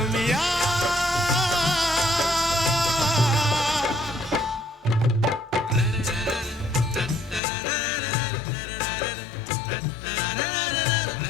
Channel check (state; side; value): drops out; right; at 7.4 s